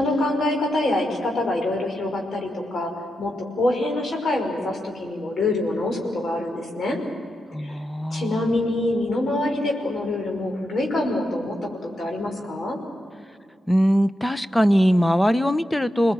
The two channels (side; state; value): both; normal; correlation 0.86